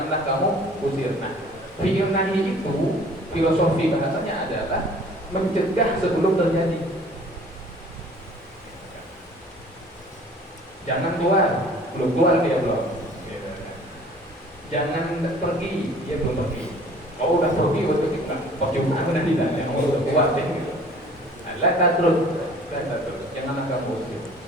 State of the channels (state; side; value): normal; both; correlation 0.50